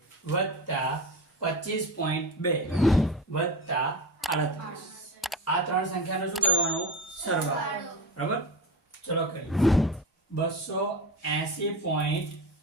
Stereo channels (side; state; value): both; normal; correlation 0.24